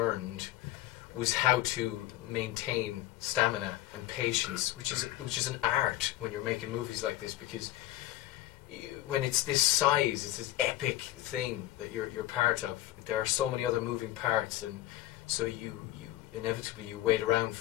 was how to maintain stamina and patience, which is an art when you're making movies like this, because when it's this size, it's this epic thing that you're part of. There are so many other moving parts, and so you inevitably you wait around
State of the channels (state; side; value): quieter; right; 14.9 dB